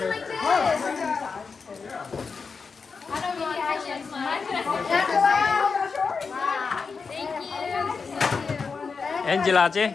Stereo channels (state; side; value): quieter; right; 5.1 dB